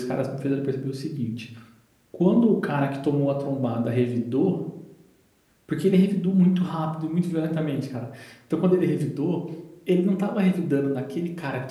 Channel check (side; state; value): both; identical; correlation 1.00